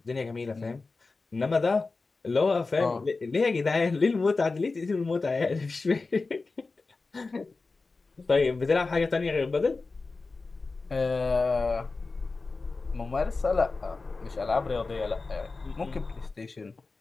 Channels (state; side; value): quieter; right; 3.8 dB